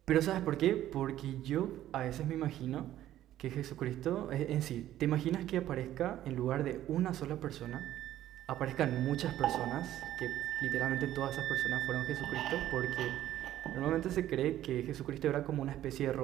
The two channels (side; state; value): left; quieter; 12.9 dB